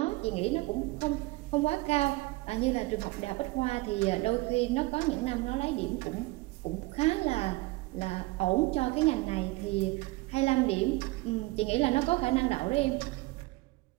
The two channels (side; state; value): left; quieter; 21.8 dB